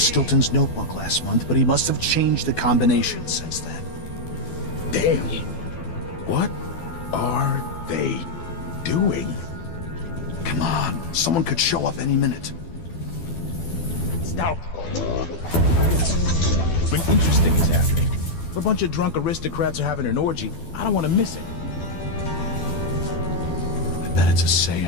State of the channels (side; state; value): right; late; 12 ms